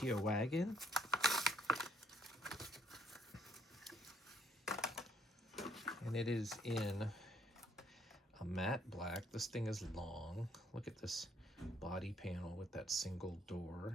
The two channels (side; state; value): both; normal; correlation 0.67